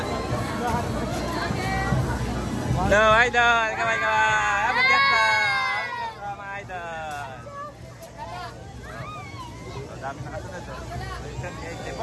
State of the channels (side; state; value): both; identical; correlation 1.00